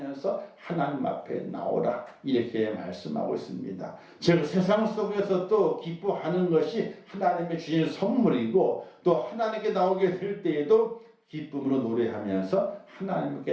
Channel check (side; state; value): both; identical; correlation 1.00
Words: 하나님 앞에 나오라 이렇게 말씀하고 있습니다. 즉 세상 속에서도 기뻐하는 것이 하나님의 주신 선물이고 또 하나님께 나오게 될 때에도 기쁨으로 노래하면서